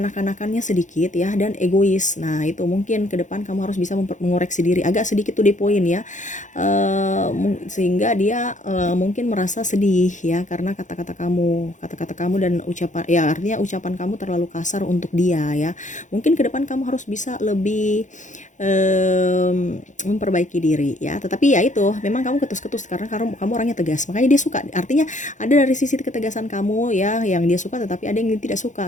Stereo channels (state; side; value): late; right; 0.36 ms